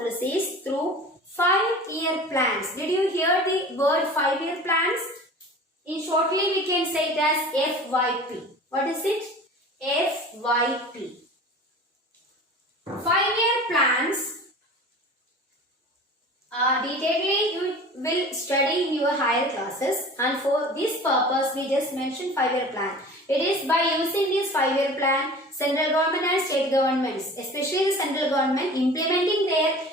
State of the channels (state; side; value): normal; both; correlation 0.40